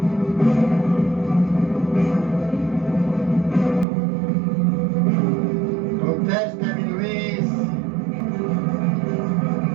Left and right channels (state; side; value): drops out; left; at 3.9 s